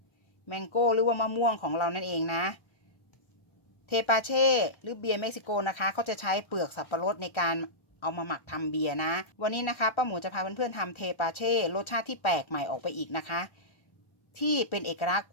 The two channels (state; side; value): late; right; 1.3 ms